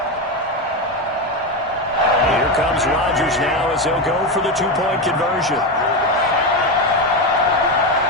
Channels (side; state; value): both; normal; correlation 0.13